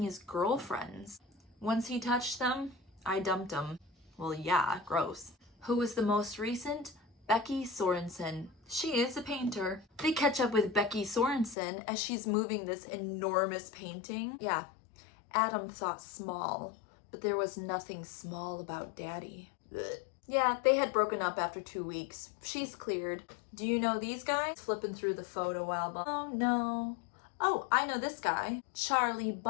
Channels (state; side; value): drops out; right; at 11.6 s